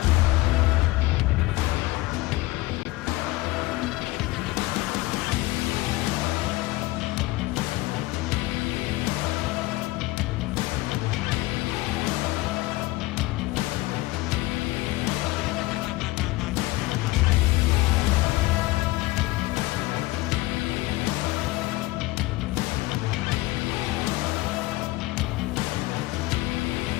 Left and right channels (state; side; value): quieter; right; 19.9 dB